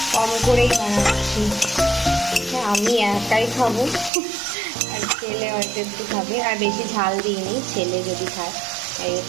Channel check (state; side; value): drops out; left; at 4.1 s